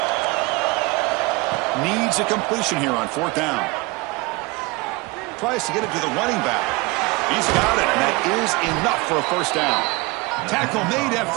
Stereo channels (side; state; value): left; quieter; 24.7 dB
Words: Needs a completion here on 4th down. Tries to get it to the running back. He's got it, and that is enough for a 1st down. Tackle made